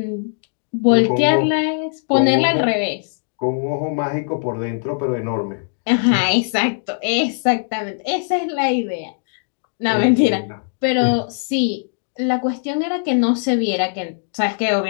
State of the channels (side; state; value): right; silent; digital silence